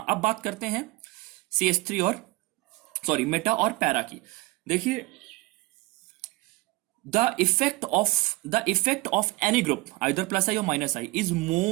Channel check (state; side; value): quieter; left; 22.7 dB